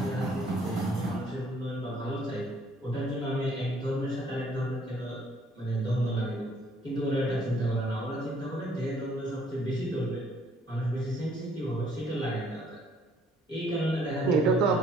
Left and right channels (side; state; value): both; normal; correlation 0.62